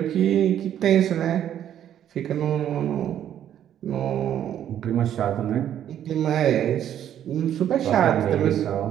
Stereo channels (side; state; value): left; quieter; 10.5 dB